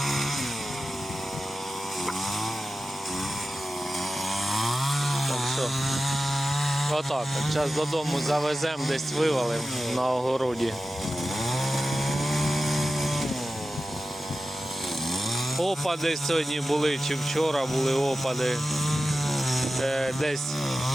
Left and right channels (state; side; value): normal; both; correlation 0.93